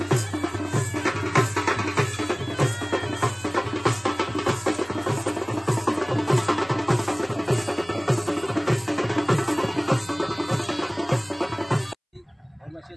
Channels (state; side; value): identical; both; correlation 1.00